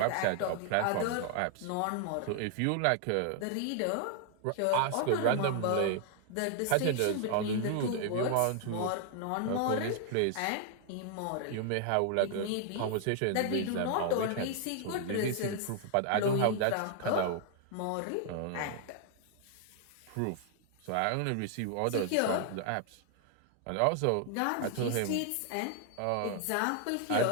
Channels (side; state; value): both; different; correlation 0.00